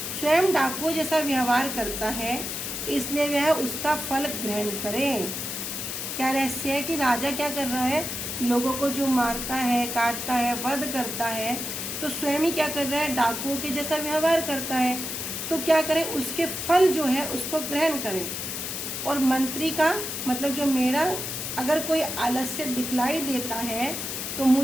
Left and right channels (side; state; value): left; noise; hiss, 4 dB below the sound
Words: स्वयं डाकुओं जैसा व्यवहार करता है, इसलिए वह उसका फल ग्रहण करे। क्या रहस्य है कि राजा क्या कर रहा है, लोगों को जो मारता है, काटता है, वध करता है, तो स्वयं ही क्या कर रहा है, डाकुओं के जैसा व्यवहार करता है। तो क्या करे, उसके फल जो है उसको ग्रहण करे। और मंत्री का मतलब जो मेरा अगर कोई आलस्य दिखलाई देता है तो